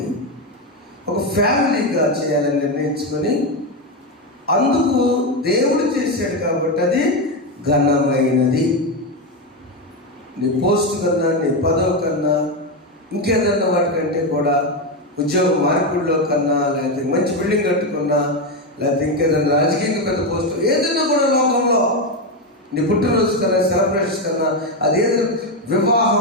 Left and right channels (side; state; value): both; normal; correlation 0.10